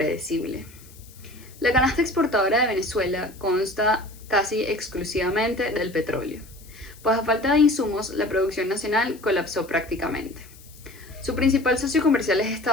La canasta exportadora de Venezuela consta casi exclusivamente del petróleo, pues a falta de insumos la producción nacional colapsó prácticamente. Su principal socio comercial es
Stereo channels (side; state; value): left; noise; hiss, 23 dB below the sound